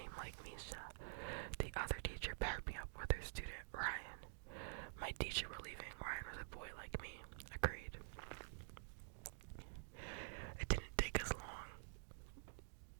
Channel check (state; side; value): silent; left; digital silence